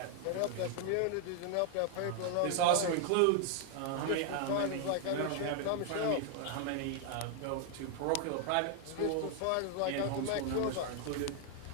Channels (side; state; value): both; different; correlation 0.00